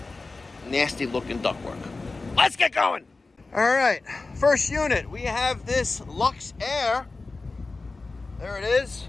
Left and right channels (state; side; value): quieter; right; 3.6 dB